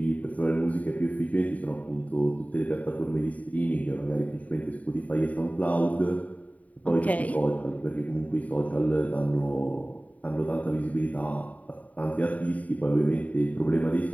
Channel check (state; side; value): late; right; 0.070 ms